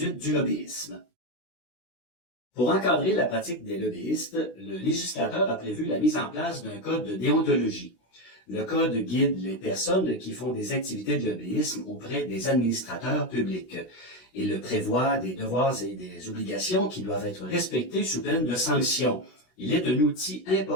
du lobbyisme. Pour encadrer la pratique des lobbyistes, le législateur a prévu la mise en place d'un code de déontologie. Le code guide les personnes qui font des activités de lobbyisme auprès des administrateurs publics. Il prévoit des devoirs et des obligations qui doivent être respectés sous peine de sanctions. Il est un outil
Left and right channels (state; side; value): late; right; 16 ms